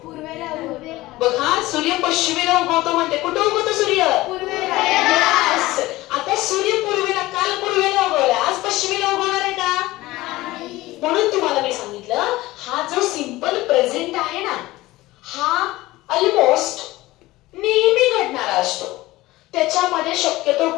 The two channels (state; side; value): quieter; right; 18.4 dB